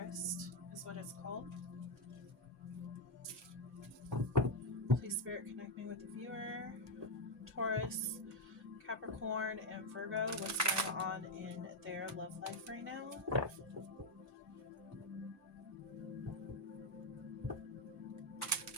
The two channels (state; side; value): normal; both; correlation 0.05